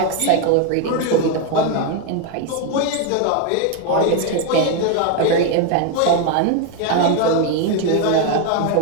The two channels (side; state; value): both; different; correlation 0.01